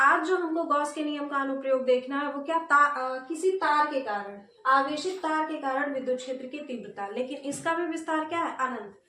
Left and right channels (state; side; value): identical; both; correlation 1.00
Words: आज जो हमको गॉस के नियम का अनुप्रयोग देखना है वो क्या, किसी तार के कारण, आवेशित तार के कारण विद्युत क्षेत्र की तीव्रता, लेकिन इसका भी विस्तार क्या है, अनंत,